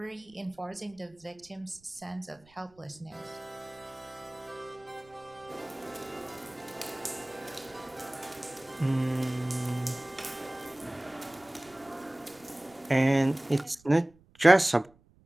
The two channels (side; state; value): right; noise; rumble, 29 dB below the sound